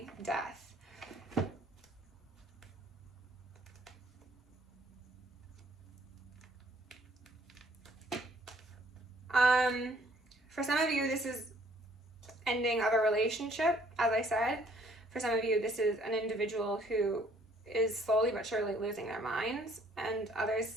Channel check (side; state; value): both; normal; correlation 0.62